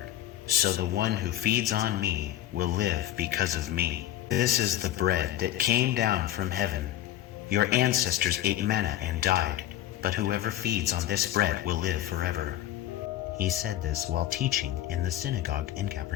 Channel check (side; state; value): right; quieter; 13.1 dB